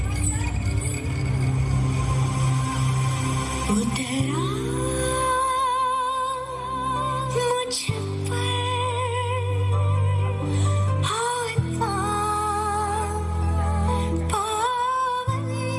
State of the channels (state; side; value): identical; both; correlation 1.00